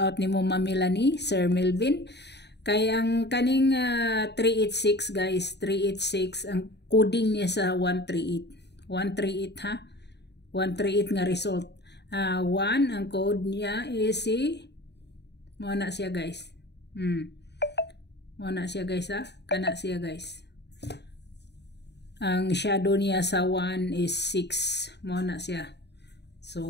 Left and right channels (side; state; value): right; late; 0.50 ms